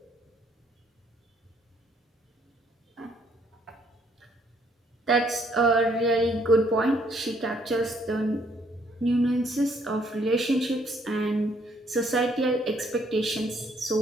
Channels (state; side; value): normal; both; correlation 0.67